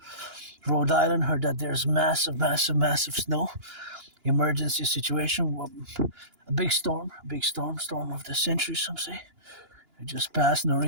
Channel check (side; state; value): left; late; 2.9 ms